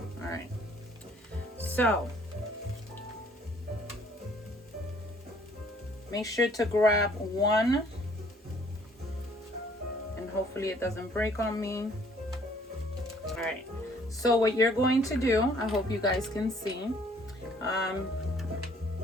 All right, so make sure to grab one, and hopefully it doesn't break on me. All right. So what you're going to do, I hope you guys can see.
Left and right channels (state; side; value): normal; both; correlation 0.60